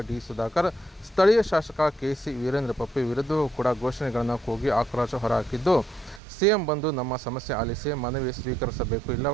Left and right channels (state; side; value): drops out; left; at 6.2 s